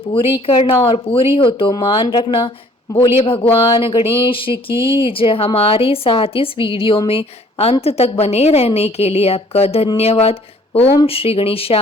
करना और पूरी हो तो मान रखना। बोलिए भगवान गणेश की जय। हमारे साथ इस वीडियो में अंत तक बने रहने के लिए आपका धन्यवाद। ओम श्री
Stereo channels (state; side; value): normal; both; correlation 0.57